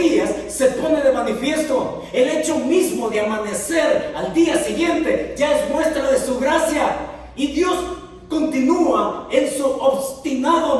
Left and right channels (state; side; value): identical; both; correlation 1.00